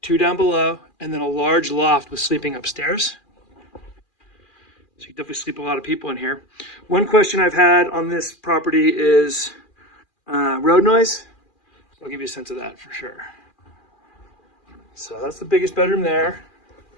2 down below, and then a large loft with sleeping upstairs. So you can definitely sleep a lot of people in here. One question I've had on this property is road noise. I'll give you a sense of that for sure. So that's the biggest bedroom there.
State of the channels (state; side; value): late; right; 2.4 ms